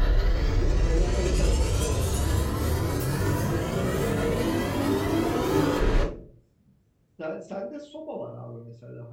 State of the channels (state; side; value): identical; both; correlation 1.00